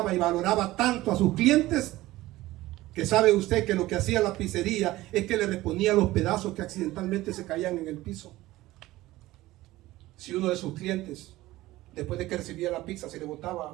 y valoraba tanto a sus clientes, que sabe usted que lo que hacía la pizzería es que le reponía los pedazos que accidentalmente se caían en el piso. Si uno de sus clientes, después de que recibía la pizza, se le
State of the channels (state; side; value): quieter; left; 17.4 dB